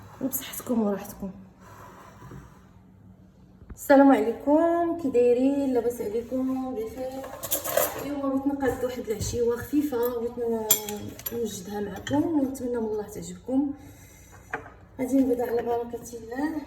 وبصحتكم وراحتكم. السلام عليكم، كي دايرين؟ لاباس عليكم؟ بخير. اليوم بغيت نقاد واحد العشيوه خفيفه، بغيت نوجدها معكم ونتمنى من الله تعجبكم. غادي نبدا على بركه الله.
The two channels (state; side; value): identical; both; correlation 1.00